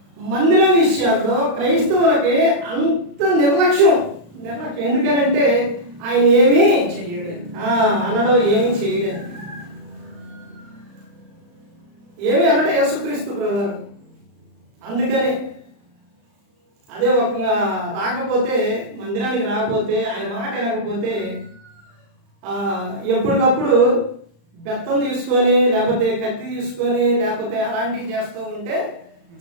మందిరం విషయాల్లో క్రైస్తవులకి అంత నిర్లక్ష్యం. ఎందుకనంటే ఆయన ఏమీ అనడం, ఏమీ చేయడం, ఏమి అనడం యేసుక్రీస్తు ప్రభువు. అందుకనే అదే ఒక రాకపోతే, మందిరానికి రాకపోతే, ఆయన మాట వినకపోతే ఎప్పటికప్పుడు బెత్తం తీసుకొని లేకపోతే కత్తి తీసుకొని లేకపోతే అలాంటివి చేస్తూ ఉంటే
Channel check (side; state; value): left; late; 35 ms